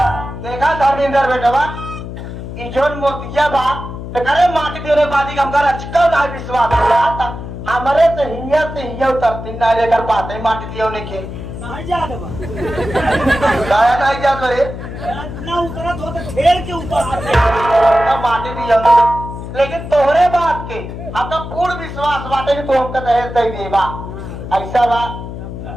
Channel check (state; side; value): noise; left; hum, 9 dB below the sound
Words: धर्मेंद्र बेटवा ई जोन मोतिया बा तो करे माटी देने बादी हम कर अच्छा ना विश्वास होला था हमरे तो हिया उतरती ना लेकर पाते माटी दियो ने के नहीं जा देबा गाया नहीं जा करे ना उतरत हो तो खेल के उतर ना माटी दियो ने लेकिन तोहरे बात के अब तो पूर्ण विश्वास बाटे कि तू हमका दहेज दे देबा ऐसा बा